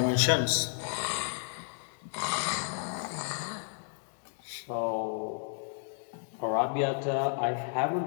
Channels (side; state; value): right; silent; digital silence